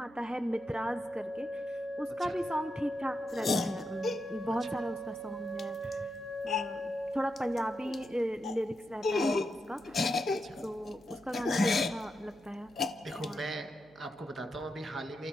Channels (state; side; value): noise; right; hum, 26 dB below the sound